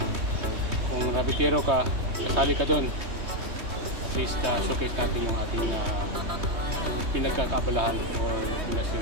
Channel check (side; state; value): left; late; 3.2 ms